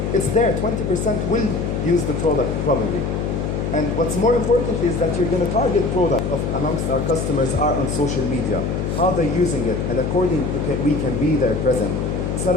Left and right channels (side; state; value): left; noise; hum, 1 dB below the sound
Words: It's there, 20% will use the product probably. And what's more important is that you're going to target product amongst our customers are on social media, how they're using it, and accordingly we can be there present. It's not